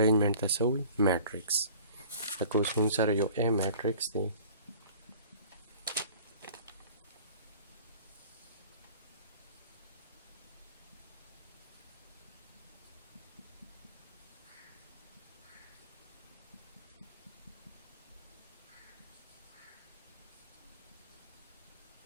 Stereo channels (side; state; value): both; inverted; correlation -0.47